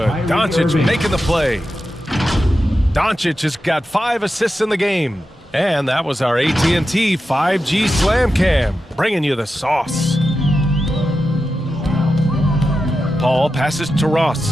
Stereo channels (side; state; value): both; normal; correlation 0.90